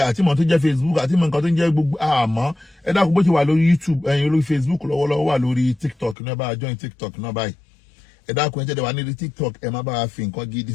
àti ìmọ̀ tó ń jẹ́ Facebook àti ìmọ̀ nǹkan tó ń jẹ́ gbogbo àmọ́ ẹ dákun bó ti wà lórí YouTube ẹ̀yin lórí Facebook lọ́wọ́lọ́wọ́ wà lórí TikTok náà bá join TikTok náà báyìí ẹ dákun ẹ jẹ́ wà nílùú TikTok ẹ má bá a fi nǹkan gidi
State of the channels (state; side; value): drops out; right; at 6.2 s